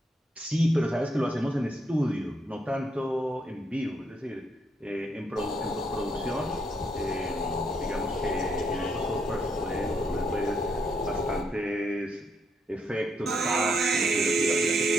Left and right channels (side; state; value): both; normal; correlation 0.75